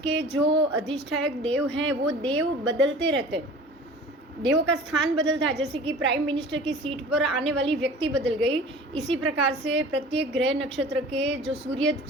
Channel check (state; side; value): normal; both; correlation 0.42